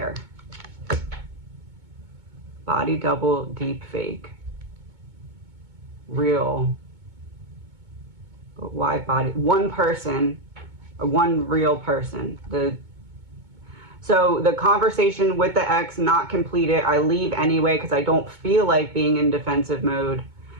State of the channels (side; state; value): left; late; 2.2 ms